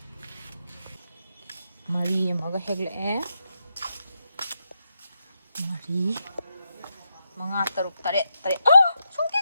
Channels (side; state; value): both; inverted; correlation -0.84